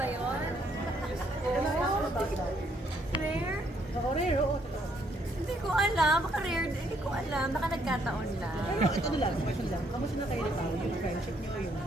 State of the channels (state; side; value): normal; both; correlation 0.70